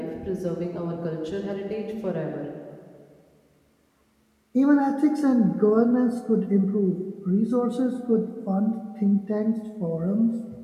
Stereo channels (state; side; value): identical; both; correlation 1.00